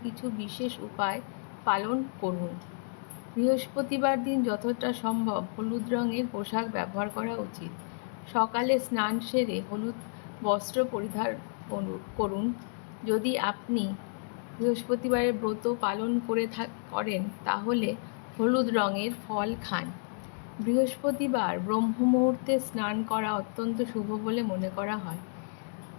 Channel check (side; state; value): right; silent; digital silence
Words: কিছু বিশেষ উপায় পালন করুন। বৃহস্পতিবার দিন যতটা সম্ভব হলুদ রঙের পোশাক ব্যবহার করা উচিত। সকালে স্নান সেরে হলুদ বস্ত্র পরিধান করুন। যদি আপনি বৃহস্পতিবারের ব্রত পালন করেন তাহলে হলুদ রঙের ফল খান। বৃহস্পতিবার ব্রহ্ম মুহূর্তে স্নান করা অত্যন্ত শুভ বলে মনে করা হয়।